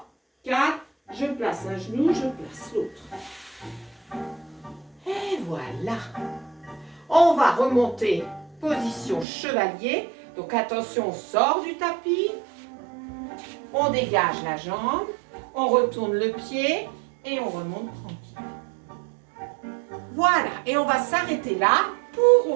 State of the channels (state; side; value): drops out; left; at 9.2 s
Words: 4. Je place un genou, je place l'autre. Et voilà. On va remonter. Position chevalier. Donc attention, on sort du tapis. On dégage la jambe. On retourne le pied. Et on remonte tranquille. Voilà. Et on va s'arrêter là pour